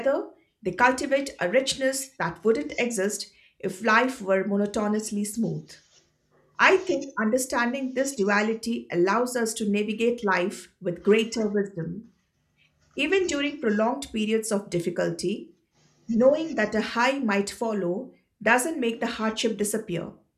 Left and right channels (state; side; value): identical; both; correlation 1.00